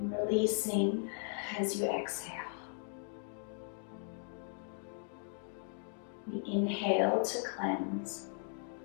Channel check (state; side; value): silent; right; 53 dB below the other